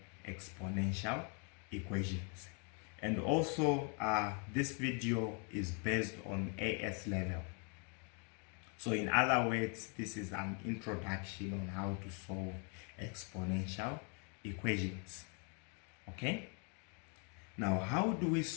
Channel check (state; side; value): quieter; right; 37.5 dB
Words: exponential equations. And also this video is based on AS level. So in other words, this is an introduction on how to solve exponential equations. Okay, now how do we